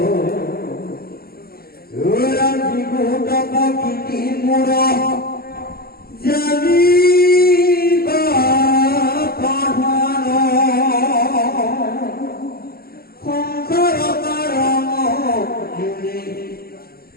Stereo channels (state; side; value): late; right; 0.44 ms